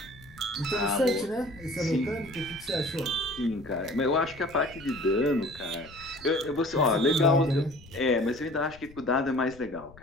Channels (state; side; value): noise; left; rumble, 21 dB below the sound